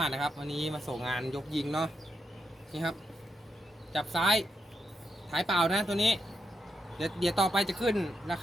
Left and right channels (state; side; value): normal; both; correlation 0.83